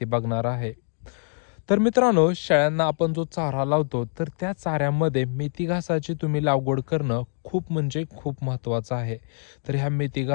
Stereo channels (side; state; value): right; silent; 62 dB below the other